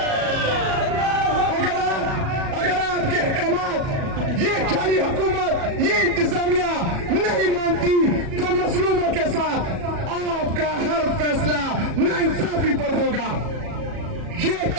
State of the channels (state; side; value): late; left; 37 ms